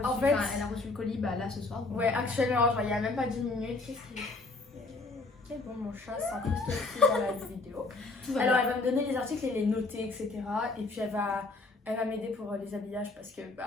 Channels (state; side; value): quieter; right; 3.5 dB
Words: reçu le colis là ce soir. Ouais, actuellement, genre, il n'y a même pas 10 minutes. Ok, bon, mon chat s'incruste dans la vidéo. Alors, elle va me donner les articles et les noter, etc. Et puis, elle va m'aider pour les habillages parce que,